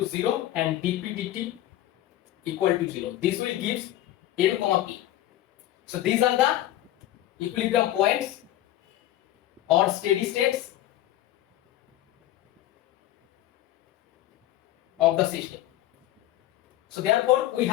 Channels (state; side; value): quieter; right; 14.0 dB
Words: 0 and dp dt equal to 0. This will give n comma p. So these are the equilibrium points or steady states of the system. So therefore we